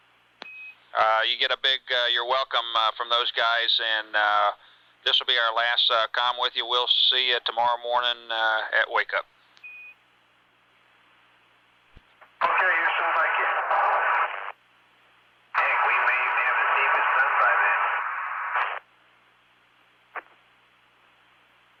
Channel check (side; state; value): both; identical; correlation 1.00